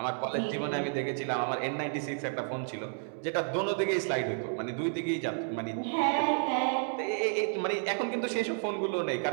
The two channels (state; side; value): silent; left; 57 dB below the other